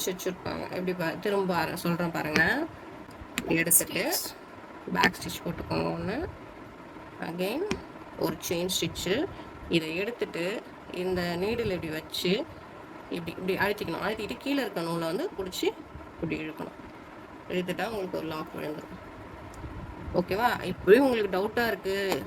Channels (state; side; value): identical; both; correlation 1.00